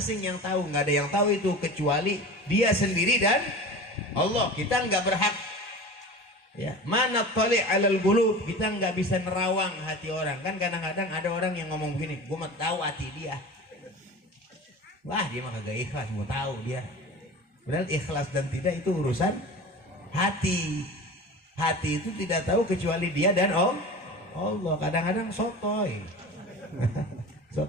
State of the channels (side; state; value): both; normal; correlation 0.34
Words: yang tahu. Nggak ada yang tahu itu kecuali dia sendiri dan Allah. Kita nggak berhak ya, mana tali alal qulub, kita nggak bisa nerawang hati orang. Kan kadang-kadang ada orang yang ngomong begini, gue mau tahu hati dia. Wah, dia mah kagak ikhlas, mau tahu dia. Padahal ikhlas dan tidak itu urusan hati. Hati itu tidak tahu kecuali dia dan Allah. Kadang-kadang sotoy. So